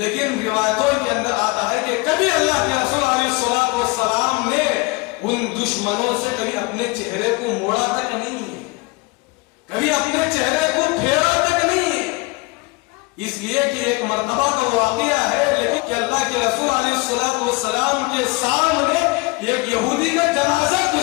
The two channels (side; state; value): right; quieter; 26.3 dB